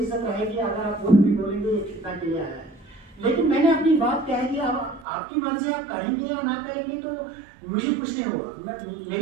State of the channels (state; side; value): drops out; left; at 5.1 s